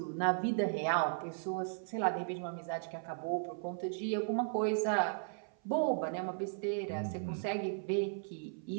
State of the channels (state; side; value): silent; left; 54 dB below the other